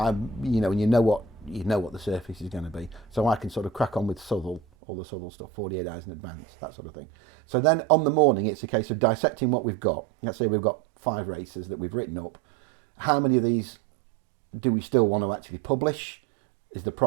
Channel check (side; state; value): left; drops out; at 4.6 s